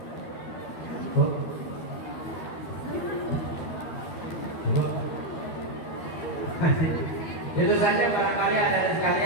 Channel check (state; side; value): late; right; 12 ms